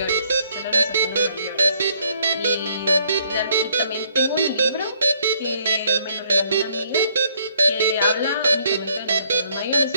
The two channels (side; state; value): both; inverted; correlation -0.66